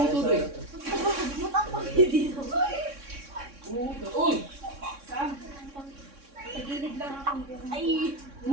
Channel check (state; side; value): late; left; 3.6 ms